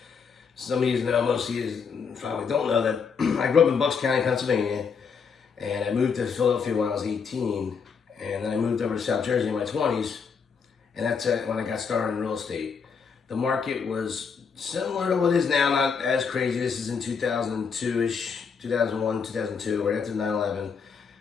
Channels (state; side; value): quieter; right; 6.0 dB